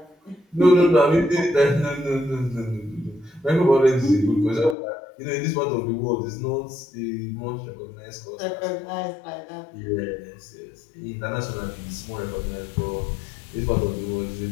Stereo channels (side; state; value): right; drops out; at 4.8 s